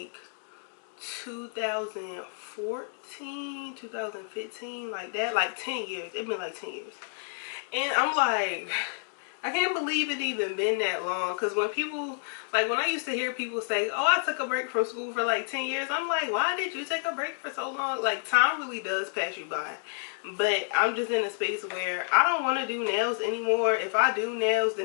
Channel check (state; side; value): silent; right; 58 dB below the other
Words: 2014, 2015, like that, like 10 years. It's been like 10 years. And I'm like, I can't believe it even been that long. Because when people, like when I used to hear people say, oh, I took a break from school for like 10 years. I'm like, why did you take a break for so long? Like, time really does pass you by. But I'm just in a space where I don't want to do nails anymore. If I do nails,